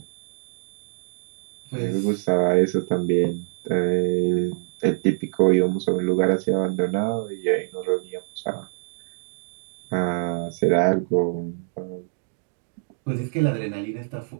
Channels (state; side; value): silent; left; digital silence